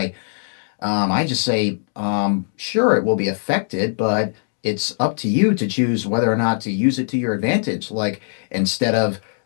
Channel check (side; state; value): right; silent; digital silence